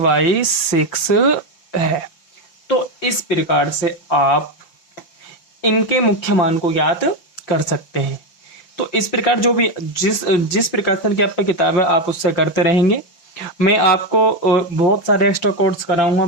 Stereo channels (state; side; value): late; right; 5.8 ms